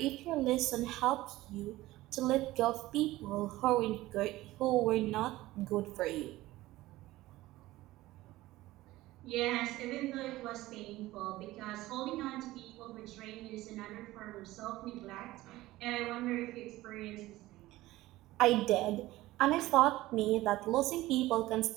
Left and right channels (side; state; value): left; quieter; 17.4 dB